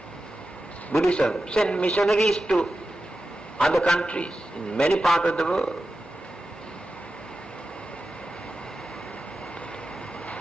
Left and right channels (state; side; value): normal; both; correlation 0.92